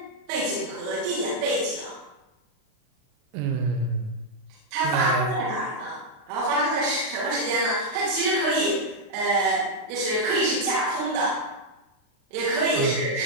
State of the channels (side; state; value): left; late; 36 ms